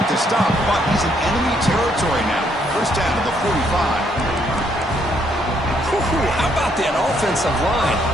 the stop, but he's in enemy territory now. First down to the 45. How about that offensive line?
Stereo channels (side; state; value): both; normal; correlation 0.71